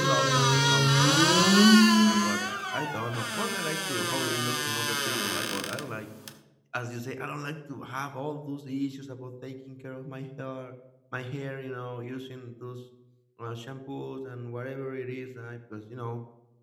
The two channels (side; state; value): both; identical; correlation 1.00